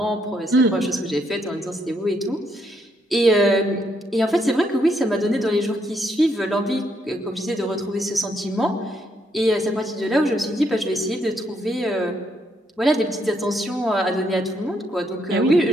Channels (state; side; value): normal; both; correlation 0.74